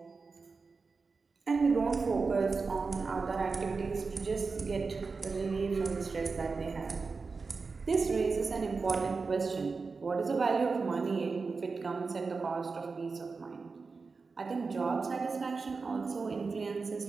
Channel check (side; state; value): left; quieter; 4.5 dB